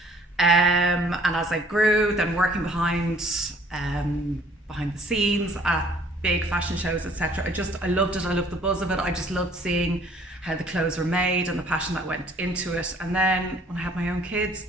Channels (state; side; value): normal; both; correlation 0.57